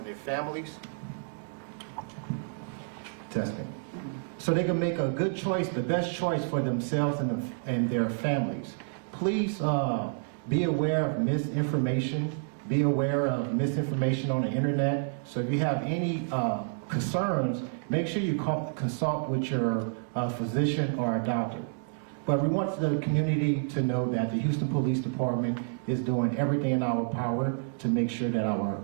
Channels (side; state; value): left; silent; digital silence